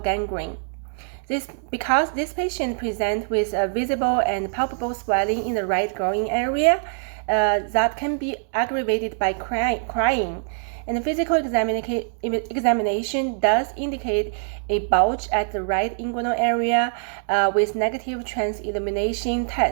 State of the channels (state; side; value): silent; left; digital silence